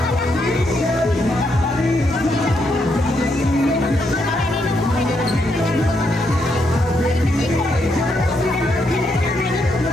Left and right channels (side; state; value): both; normal; correlation 0.78